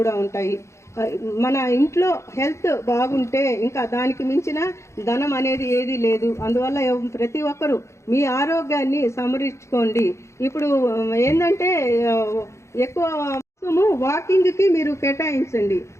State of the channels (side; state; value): right; late; 0.14 ms